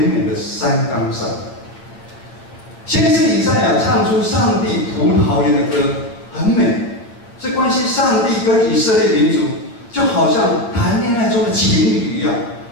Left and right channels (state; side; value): late; right; 8.5 ms